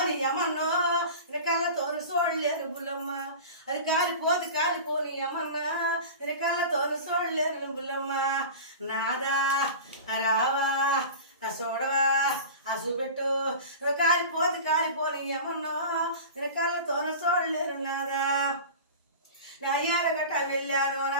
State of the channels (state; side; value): inverted; both; correlation -0.34